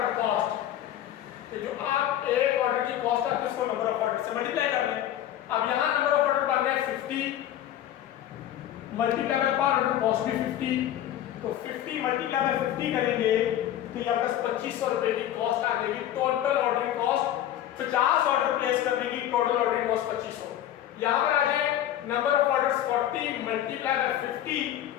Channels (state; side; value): quieter; right; 11.9 dB